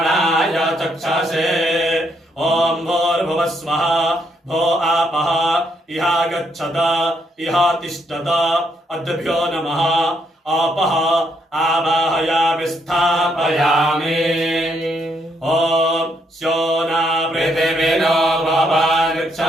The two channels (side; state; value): both; normal; correlation 0.74